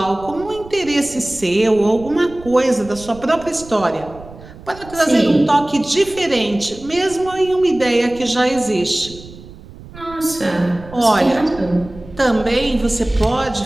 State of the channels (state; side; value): noise; right; rumble, 18 dB below the sound